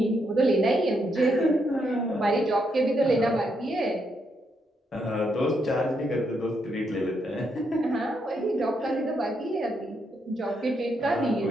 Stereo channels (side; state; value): both; normal; correlation 0.78